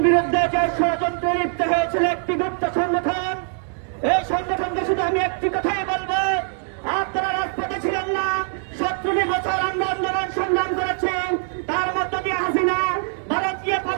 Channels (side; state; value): left; silent; 55 dB below the other